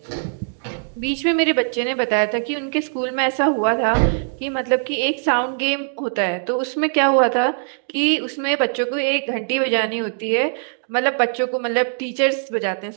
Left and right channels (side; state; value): left; silent; digital silence